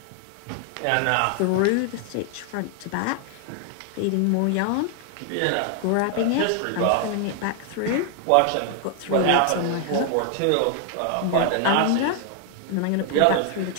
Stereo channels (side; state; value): both; different; correlation 0.00